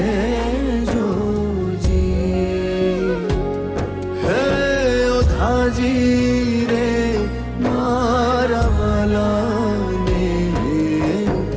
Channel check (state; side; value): identical; both; correlation 1.00